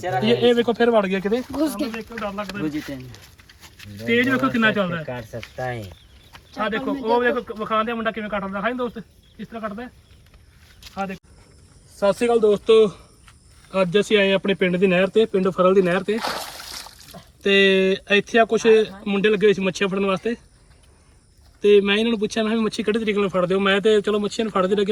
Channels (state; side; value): identical; both; correlation 1.00